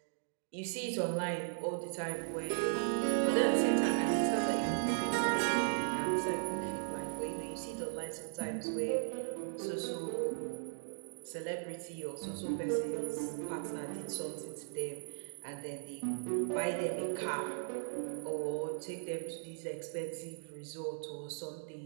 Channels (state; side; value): silent; left; digital silence